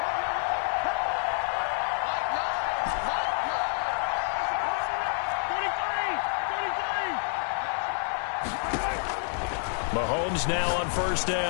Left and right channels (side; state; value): right; silent; 59 dB below the other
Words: Mahomes now on 1st